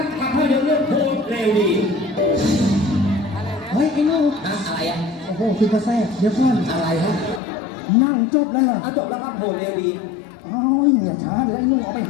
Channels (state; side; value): drops out; right; at 7.4 s